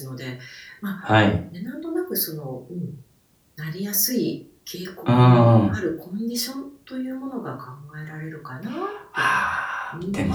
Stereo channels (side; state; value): both; identical; correlation 1.00